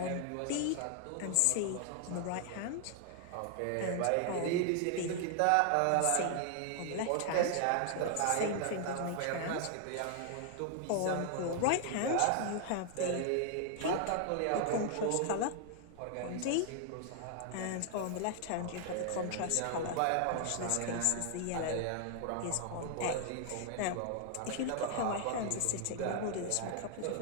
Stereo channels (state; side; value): different; both; correlation 0.00